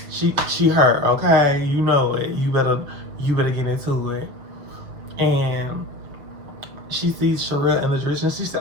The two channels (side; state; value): left; late; 7.3 ms